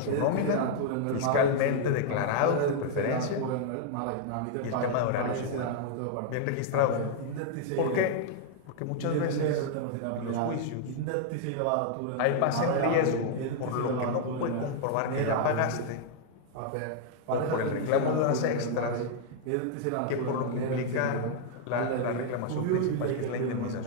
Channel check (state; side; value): different; both; correlation 0.00